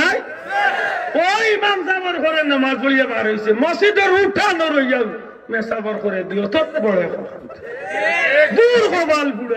ওই ইমাম সাহেবের ঘরে নামাজ পড়িয়া বার হয়েছে মসজিদের উঠানো রইয়া মেসাবর করে দিও তত বড় দূর হবাল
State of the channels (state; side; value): identical; both; correlation 1.00